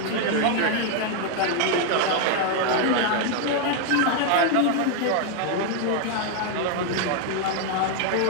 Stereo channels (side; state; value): both; different; correlation 0.00